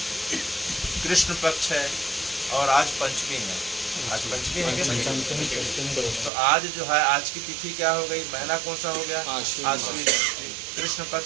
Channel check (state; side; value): drops out; left; at 6.3 s